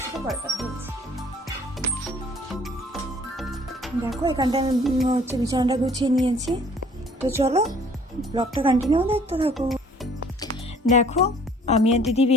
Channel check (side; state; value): both; normal; correlation 0.55